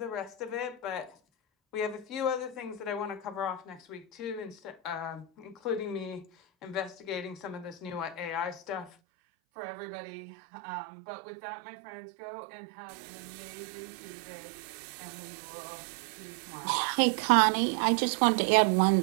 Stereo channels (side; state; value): left; drops out; at 9.0 s